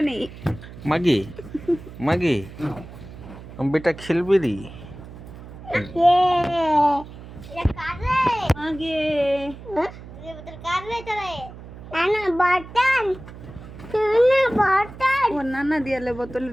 মাগি মাগি বেটা খেলবি রি আগে ও নানা দিয়ালে বোতল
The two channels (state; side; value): noise; right; hum, 15 dB below the sound